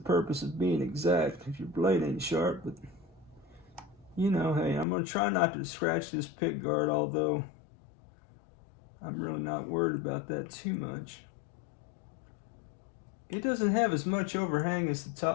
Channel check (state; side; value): drops out; right; at 4.9 s